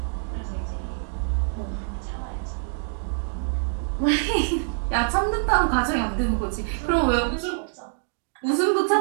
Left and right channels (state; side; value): silent; left; digital silence